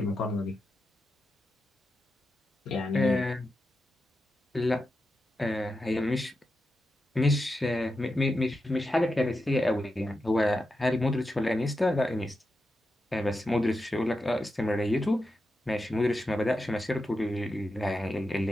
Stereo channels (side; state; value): both; normal; correlation 0.89